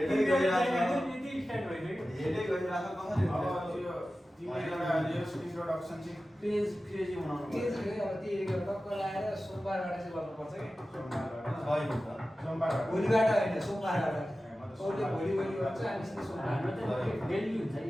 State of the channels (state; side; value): normal; both; correlation 0.95